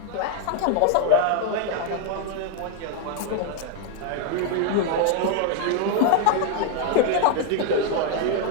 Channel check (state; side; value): different; both; correlation 0.00